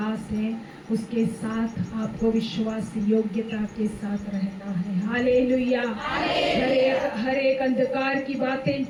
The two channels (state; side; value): identical; both; correlation 1.00